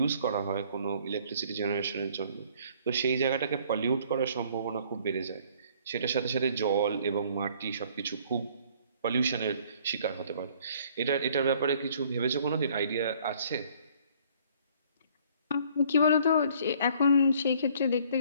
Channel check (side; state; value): both; inverted; correlation -0.58